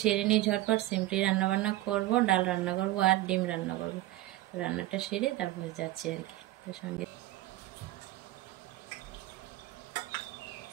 সেরে নিই ঝটপট। সিম্পলি রান্নাবান্না করব, ডাল রান্না করব আর ডিম রান্না করব। রান্নাটা সেরে তারপরে যাচ্ছি আর কি। তো সঙ্গে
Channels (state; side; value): quieter; left; 16.5 dB